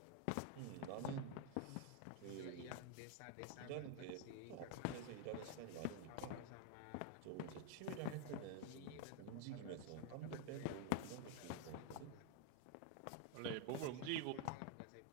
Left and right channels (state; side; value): different; both; correlation 0.01